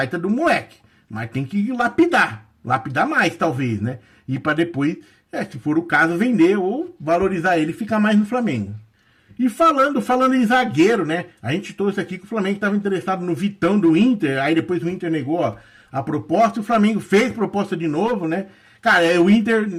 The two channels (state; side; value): identical; both; correlation 1.00